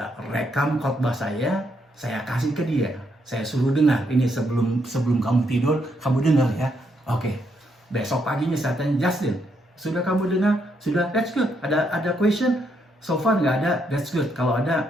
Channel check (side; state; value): both; normal; correlation 0.76